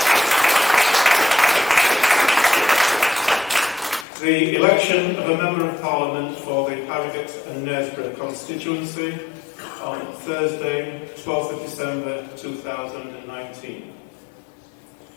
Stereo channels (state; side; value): drops out; right; at 4.0 s